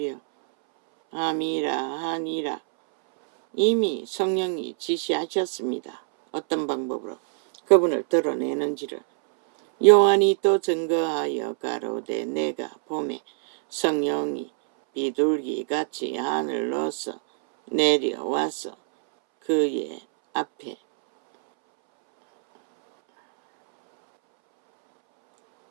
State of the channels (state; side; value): silent; left; 62 dB below the other